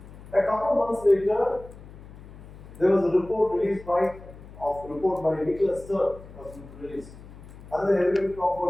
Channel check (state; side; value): noise; left; hum, 17 dB below the sound